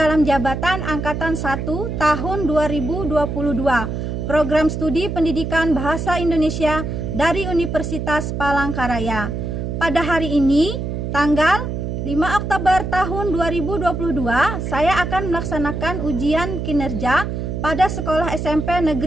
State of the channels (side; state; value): right; noise; hum, 4 dB below the sound